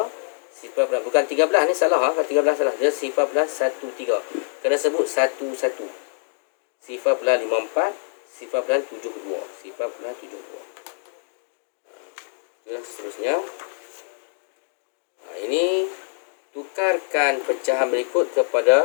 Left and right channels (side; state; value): right; silent; 60 dB below the other